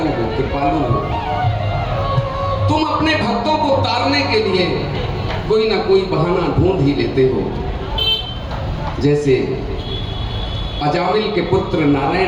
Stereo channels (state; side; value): identical; both; correlation 1.00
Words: हो, कृपालु हो। तुम अपने भक्तों को तारने के लिए कोई ना कोई बहाना ढूंढ ही लेते हो। जैसे अजामिल के पुत्र